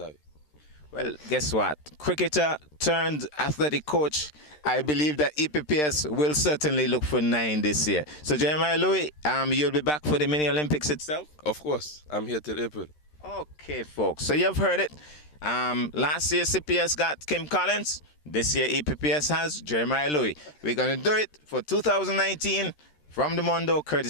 Well, guess what? Cricketer turned athletic coach. I believe that EPPS will certainly look for 9 this year. So Jeremiah Louis, you'll be back for the Mini Olympics itself? Of course. I'm here till April. Okay, folks. So you've heard it. Last year CPS got Kim Collins. This year EPPS has Jeremiah Louis. We're going to do it for 2019. From the Mondo,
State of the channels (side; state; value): right; late; 13 ms